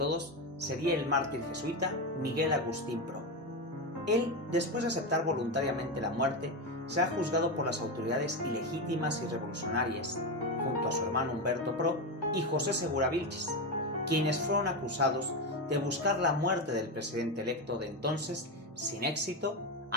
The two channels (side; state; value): both; normal; correlation 0.13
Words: sería el mártir jesuita Miguel Agustín Pro. Él, después de aceptar voluntariamente la muerte, será juzgado por las autoridades ilegítimas y revolucionarias, junto a su hermano Humberto Pro y José Segura Vilches, quienes fueron acusados de buscar la muerte del presidente electo de entonces, sin éxito,